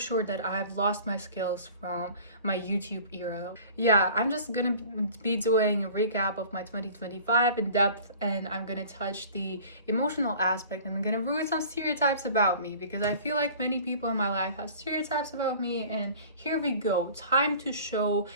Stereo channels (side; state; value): both; inverted; correlation -0.45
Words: that I've lost my skills from my YouTube era. Yeah, I'm just gonna be doing a recap of my 2025 in depth, and I'm gonna touch the emotional aspect, and I'm gonna ruin some stereotypes about me because I feel like many people in my life have stereotypes about me, and here we go. Time to show